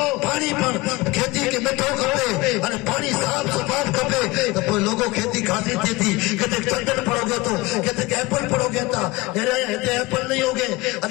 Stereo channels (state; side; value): quieter; right; 21.6 dB